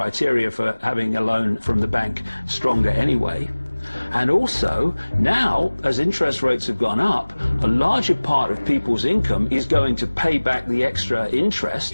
for having a loan from the bank stronger anyway. And also, now, as interest rates have gone up, a larger part of people's income is going to pay back the extra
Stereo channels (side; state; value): both; inverted; correlation -1.00